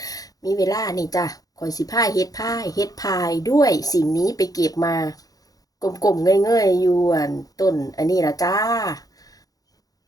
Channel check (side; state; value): right; late; 0.18 ms